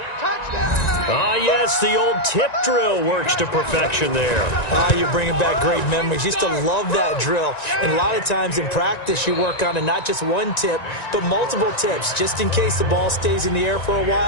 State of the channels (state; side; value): late; right; 1.9 ms